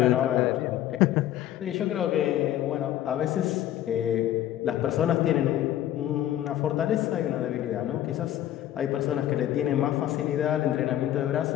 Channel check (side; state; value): right; quieter; 12.5 dB